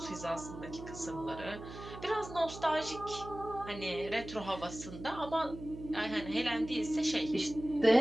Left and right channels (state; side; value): noise; right; hum, 12 dB below the sound